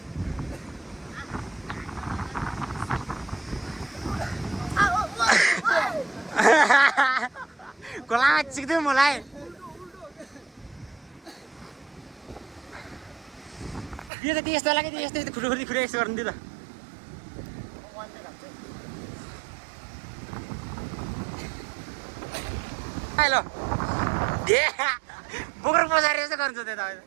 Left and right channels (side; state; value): left; drops out; at 14.1 s